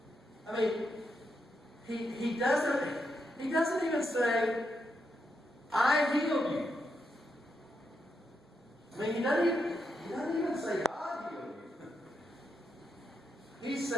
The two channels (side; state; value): both; normal; correlation 0.83